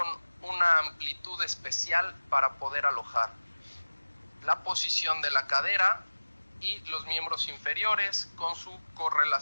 una amplitud especial para poder alojar. La posición de la cadera y los miembros inferiores con su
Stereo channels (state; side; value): inverted; both; correlation -1.00